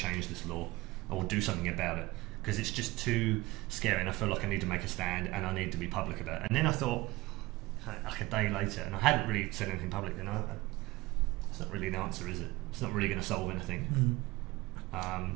this law or do something about it, because it's just too scary and I feel like I need to make a stand and I need to be public about it. And then I thought, like a day later, and I hadn't really said anything public, it's not really an answer, is it? It's not really going to solve anything.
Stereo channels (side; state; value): left; quieter; 20.2 dB